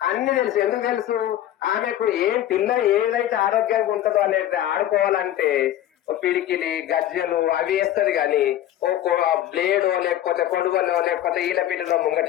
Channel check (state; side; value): quieter; right; 12.4 dB